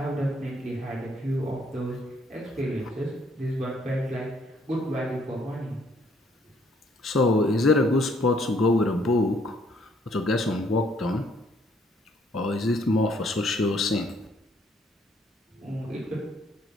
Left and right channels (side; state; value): both; normal; correlation 0.65